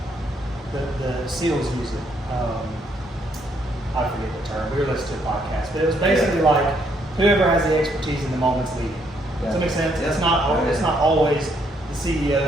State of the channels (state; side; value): normal; both; correlation 0.71